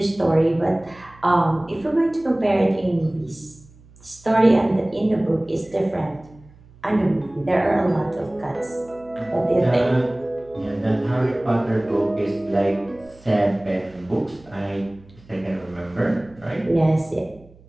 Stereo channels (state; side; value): noise; right; hum, 25 dB below the sound